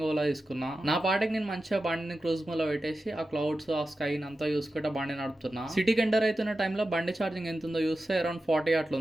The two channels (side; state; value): both; normal; correlation 0.93